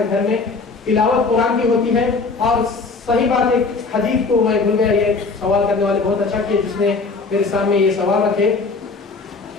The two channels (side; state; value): right; quieter; 4.2 dB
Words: گھر میں تلاوت قرآن کی ہوتی ہے. اور صحیح بات ایک حدیث کو میں بھول گیا، یہ سوال کرنے والے بہت اچھا کیا جس نے میرے سامنے یہ سوال رکھے.